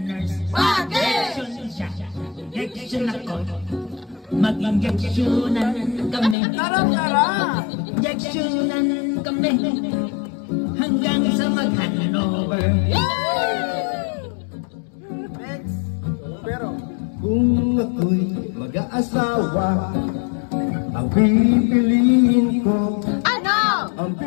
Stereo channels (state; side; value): drops out; right; at 6.4 s